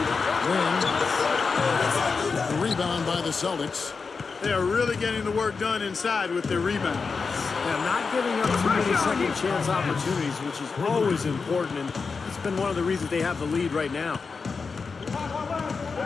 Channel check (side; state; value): right; quieter; 4.9 dB